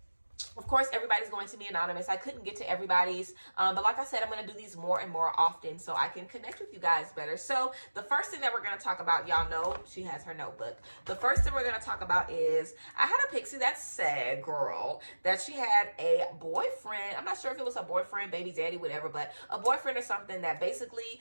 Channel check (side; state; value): both; inverted; correlation -1.00